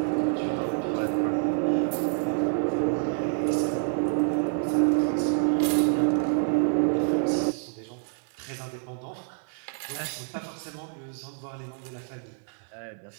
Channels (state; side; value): silent; left; 59 dB below the other